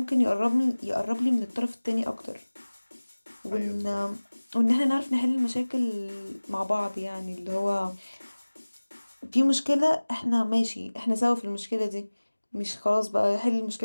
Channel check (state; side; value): inverted; both; correlation -1.00